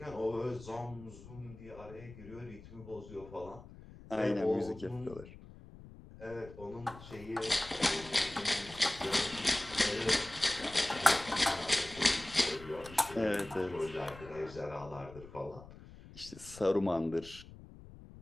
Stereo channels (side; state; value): left; noise; rumble, 17 dB below the sound